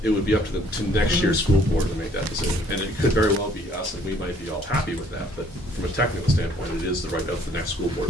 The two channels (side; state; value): both; normal; correlation 0.61